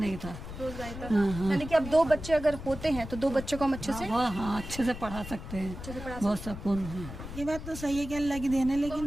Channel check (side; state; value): left; noise; rumble, 10 dB below the sound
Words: था। यानी कि अब 2 बच्चे अगर होते हैं तो 2 बच्चों को हम अच्छे से अच्छे से पढ़ा सकते हैं, बहुत सुकून है। ये बात तो सही है कि अल्लाह की देन है,